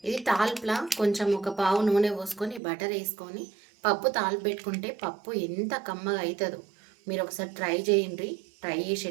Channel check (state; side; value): drops out; left; at 2.6 s